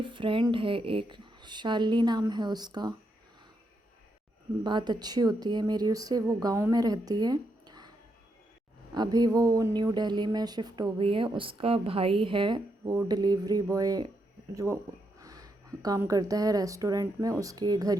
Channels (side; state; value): both; normal; correlation 0.81